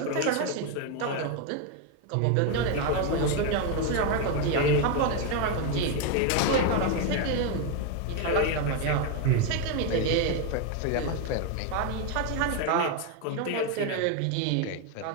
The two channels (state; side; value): different; both; correlation 0.02